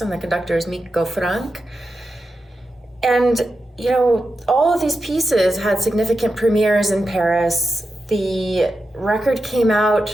and the conductor is Miko Frank. And, you know, all of these pieces had significant premieres in Paris. The record came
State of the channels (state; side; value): normal; both; correlation 0.89